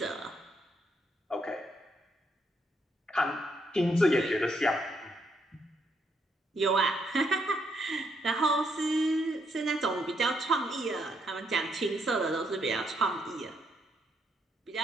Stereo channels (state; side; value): normal; both; correlation 0.75